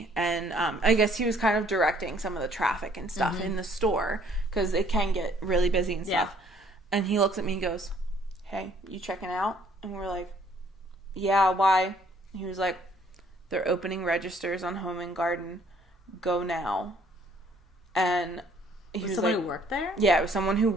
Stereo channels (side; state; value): both; normal; correlation 0.62